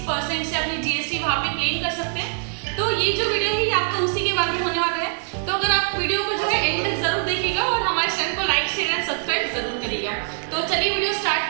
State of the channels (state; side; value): silent; left; digital silence